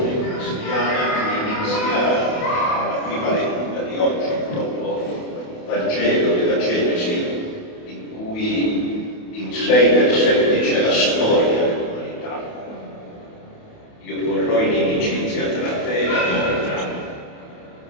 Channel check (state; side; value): late; right; 28 ms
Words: cristiana che inizia nella prima lettura di oggi, proprio il Vangelo della Genesi, in cui in 6 versetti c'è la storia dell'umanità. Io porrò in inimicizia tra te e la donna,